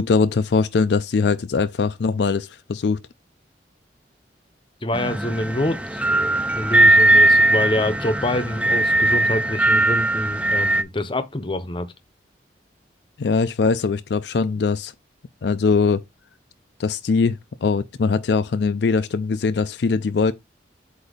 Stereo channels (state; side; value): normal; both; correlation 0.59